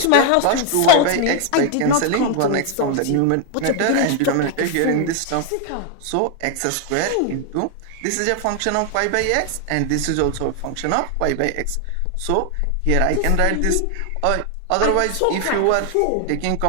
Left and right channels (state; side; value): different; both; correlation 0.01